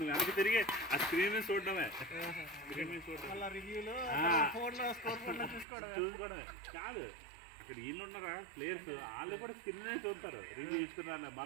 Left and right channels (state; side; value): drops out; left; at 5.7 s